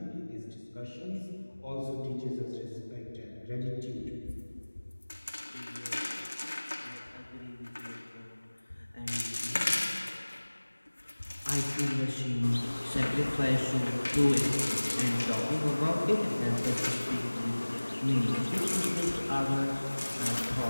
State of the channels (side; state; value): both; inverted; correlation -1.00